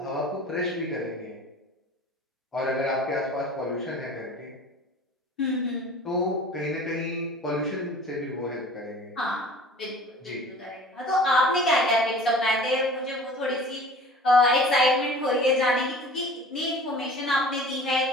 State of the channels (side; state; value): both; normal; correlation 0.43